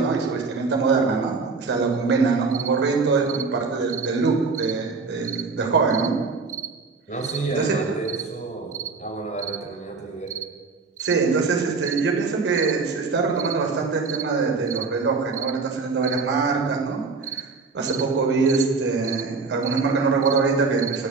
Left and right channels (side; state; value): left; quieter; 4.4 dB